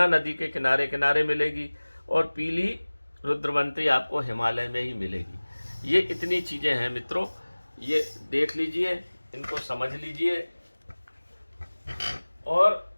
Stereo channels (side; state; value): both; inverted; correlation -1.00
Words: नदी के किनारे किनारे मिलेगी, और पीली रुद्रवंती आपको हिमालय में ही मिलेगी। ये इतनी चीज़ें हैं मित्रों, ये देख लीजिए, इनको समझ लीजिए। और